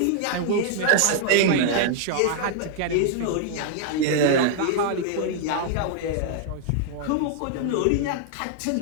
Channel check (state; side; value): different; both; correlation -0.01